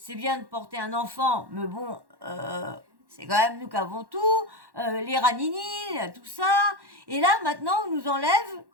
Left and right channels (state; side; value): late; left; 1.1 ms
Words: bien de porter un enfant, mais bon, c'est quand même nous qui avons tout, les ranini, tout ça. Et là, maintenant, on nous enlève